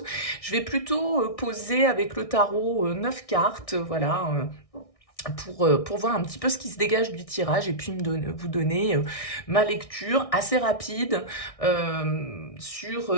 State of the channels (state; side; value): late; right; 1.6 ms